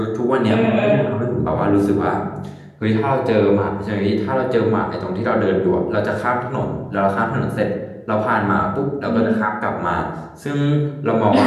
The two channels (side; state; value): both; identical; correlation 1.00